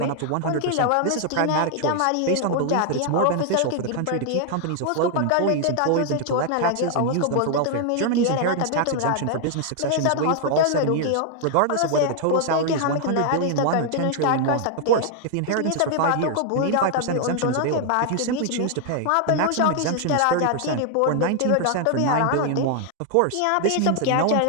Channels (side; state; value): both; different; correlation 0.00